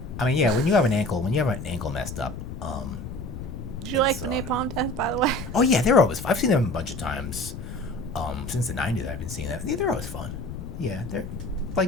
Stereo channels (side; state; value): left; noise; rumble, 9 dB below the sound